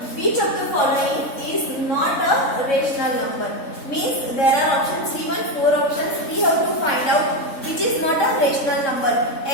which of the following is not a rational number? Means there are options given, 4 options. We have to find out which is not a rational number.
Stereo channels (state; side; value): late; right; 3.7 ms